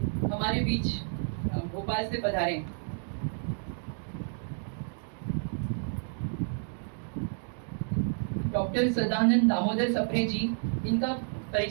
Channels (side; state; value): left; silent; digital silence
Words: हमारे बीच भोपाल से पधारे डॉक्टर सदानंद दामोदर सप्रे जी, इनका